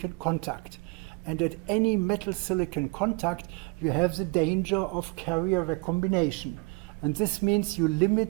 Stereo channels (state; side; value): quieter; left; 28.4 dB